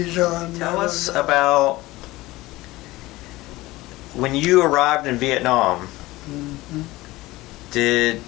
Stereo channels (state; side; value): quieter; right; 19.1 dB